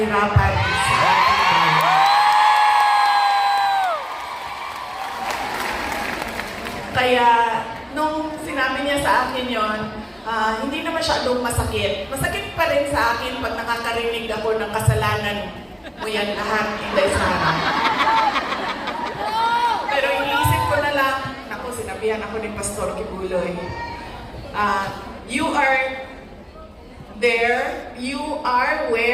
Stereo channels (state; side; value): identical; both; correlation 1.00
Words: sa ating bayan. Kaya, nung sinabi niya sa akin yon, hindi na masyadong masakit. Masakit pa rin sa akin pag nakakarinig ako ng kasalanan mo yan lahat, Inday Sara. Pero iniisip ko na lang, naku, sinabihan ako ni Pastor Kibuloy, you are there, you are